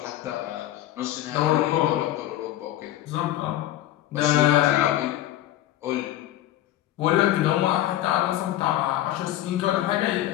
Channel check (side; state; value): right; quieter; 13.7 dB